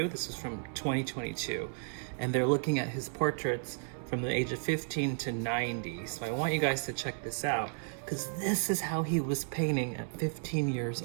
This is from 2022. And they're looking at his portraits from the age of 15 to 90. So I want you guys to check this out, because this is how he was painting at 15 years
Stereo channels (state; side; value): silent; left; digital silence